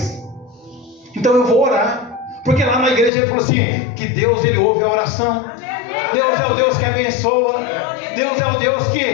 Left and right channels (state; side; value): drops out; right; at 3.1 s